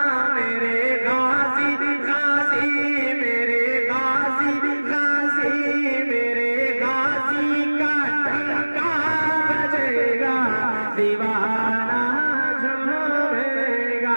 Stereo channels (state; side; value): inverted; both; correlation -1.00